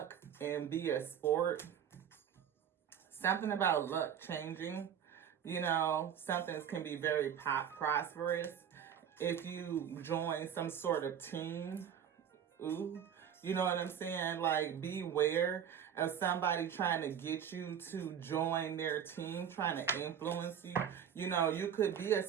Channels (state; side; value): quieter; left; 8.7 dB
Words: and be a sport. Something about luck changing. Something can be very prosperous. If you join some sort of team, you know what I'm saying? Like, beware of somebody trying to get you to join their team, trying to influence you. You could be a